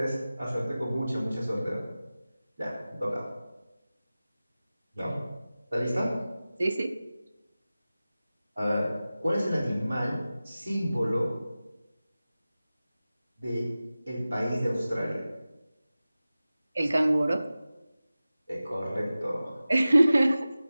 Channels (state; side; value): inverted; both; correlation -0.96